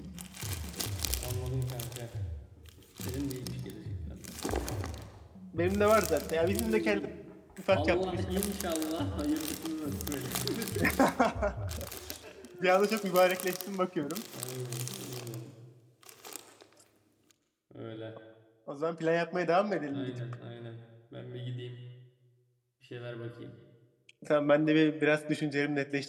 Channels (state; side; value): identical; both; correlation 1.00